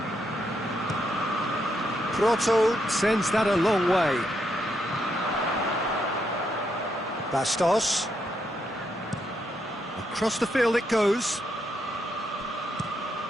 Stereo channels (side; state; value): both; normal; correlation 0.79